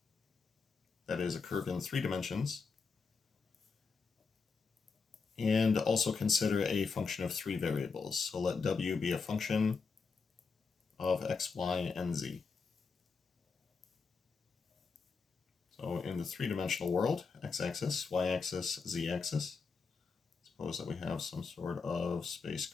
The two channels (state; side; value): quieter; right; 4.9 dB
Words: that is a curve in 3 dimensions, and also consider a function of 3 variables. So let w be a function of x, y, and z. So in the 3-dimensional world, x-axis, y-axis, z-axis, suppose that we have some sort of space